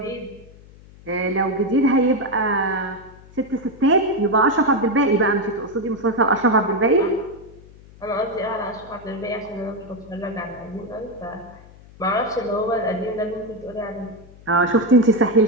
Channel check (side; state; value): left; noise; hum, 22 dB below the sound